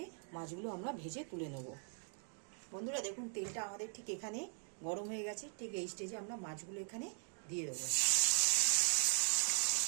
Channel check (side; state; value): left; silent; 51 dB below the other